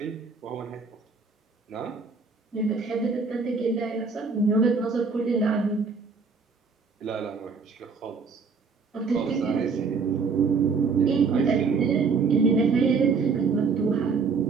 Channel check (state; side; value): quieter; left; 4.9 dB